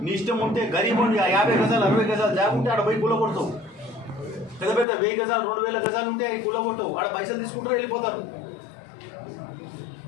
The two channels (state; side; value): drops out; right; at 4.9 s